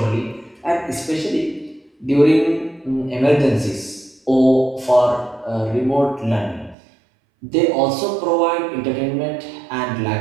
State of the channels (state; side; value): drops out; left; at 6.8 s